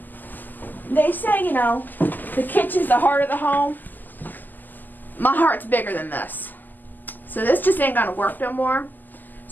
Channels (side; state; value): right; late; 0.087 ms